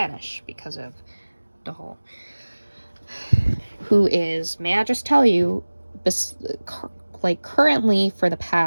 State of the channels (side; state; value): both; inverted; correlation -1.00